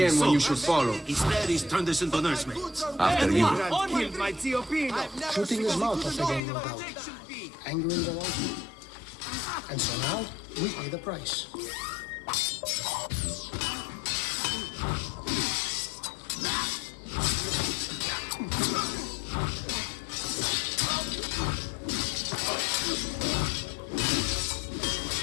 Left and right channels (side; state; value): right; drops out; at 6.4 s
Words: when you should follow. Instead, he's turned us into nursemaids. After you. Shooting his mouth off again, no doubt. Angering the wrong people. And so now, we pay the price.